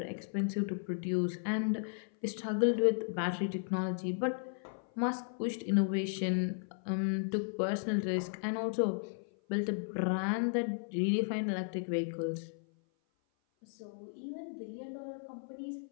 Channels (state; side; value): silent; right; 54 dB below the other